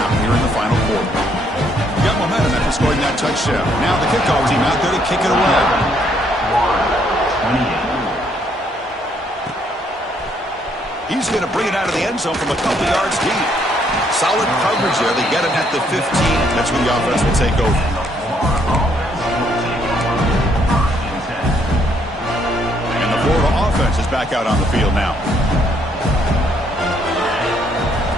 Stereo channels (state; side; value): normal; both; correlation 0.69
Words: here in the final quarter. Got momentum after scoring that touchdown. Now the kickoff team out there to kick it away. 28. He's going to bring it out of the end zone from a couple yards deep. Solid coverage there. They get him at the 15. That's when the offense will take over. And the Florida offense is back out on the field now.